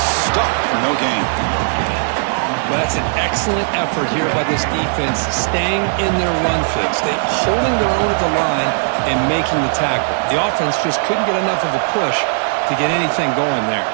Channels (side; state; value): left; silent; digital silence